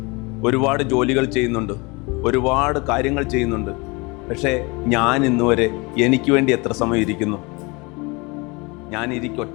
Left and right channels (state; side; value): quieter; right; 27.0 dB